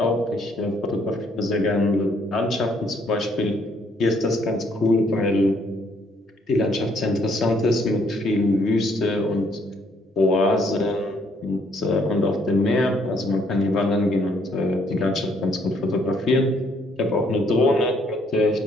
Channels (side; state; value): both; normal; correlation 0.68